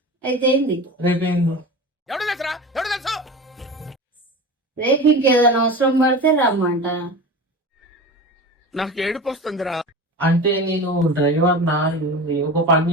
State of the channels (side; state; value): both; normal; correlation 0.31